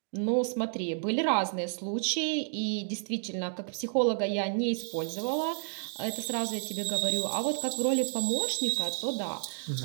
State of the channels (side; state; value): left; silent; digital silence